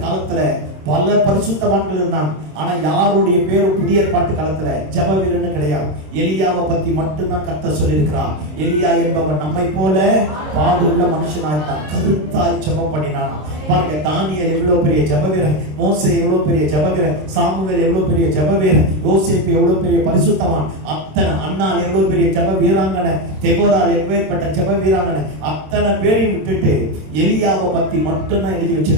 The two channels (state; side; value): late; left; 26 ms